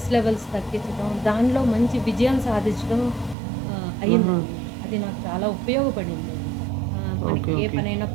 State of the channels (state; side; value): drops out; left; at 3.4 s